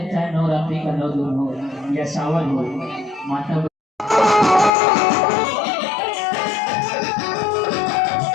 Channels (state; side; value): drops out; right; at 4.7 s